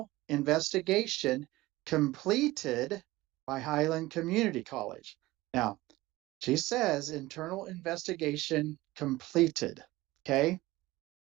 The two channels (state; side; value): quieter; left; 18.7 dB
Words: investigation completed by Highland Community College. Now, she says internal investigation completed. Okay?